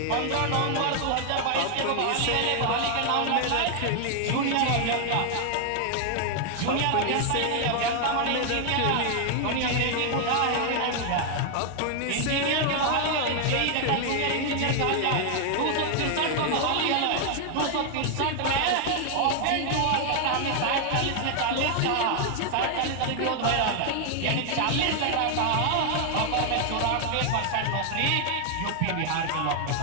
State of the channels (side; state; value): both; different; correlation 0.00